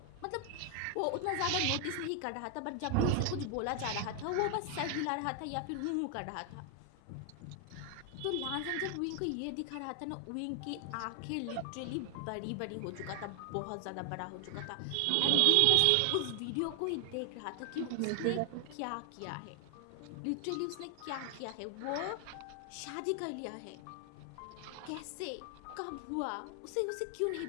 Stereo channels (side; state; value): both; different; correlation 0.00